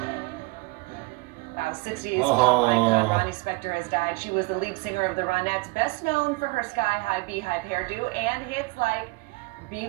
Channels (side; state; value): left; quieter; 25.1 dB